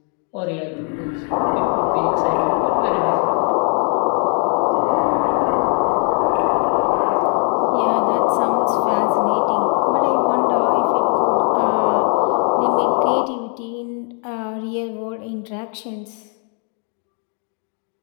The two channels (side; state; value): right; quieter; 39.2 dB